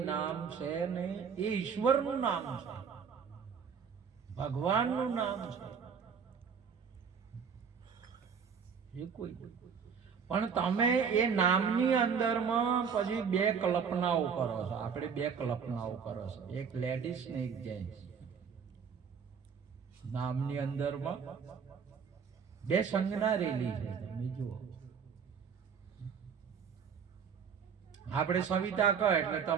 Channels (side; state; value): left; quieter; 6.6 dB